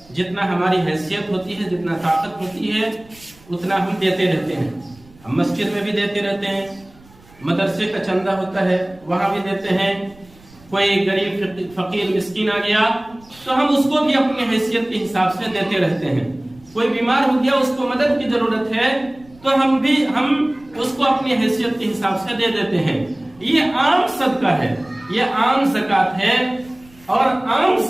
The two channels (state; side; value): noise; right; rumble, 26 dB below the sound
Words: جتنا ہماری حیثیت ہوتی ہے، جتنا طاقت ہوتی ہے، اتنا ہم دیتے رہتے ہیں۔ ہم مسجد میں بھی دیتے رہتے ہیں، مدرسے کا چندہ ہوتا ہے وہاں بھی دیتے ہیں۔ کوئی غریب فقیر مسکین آ گیا تو ہم اس کو بھی اپنی حیثیت کے حساب سے دیتے رہتے ہیں۔ کوئی بیمار ہو گیا، اس کو مدد کی ضرورت ہے تو ہم اس کو اپنی حیثیت کے حساب سے دے دیتے ہیں۔ یہ عام صدقہ ہے، یہ عام زکات ہے، اور عام